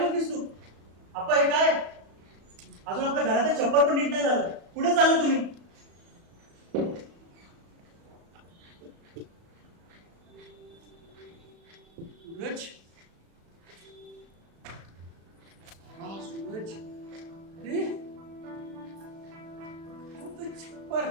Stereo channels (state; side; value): late; left; 36 ms